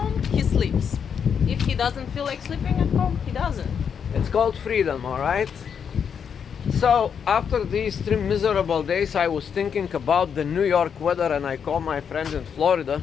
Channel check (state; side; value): quieter; right; 7.2 dB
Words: he sleeps. If he doesn't feel like sleeping at home, he doesn't. it's called freedom, all right? So after these 3 miserable days, I was thinking about the New York weather, and I called my friend in Florida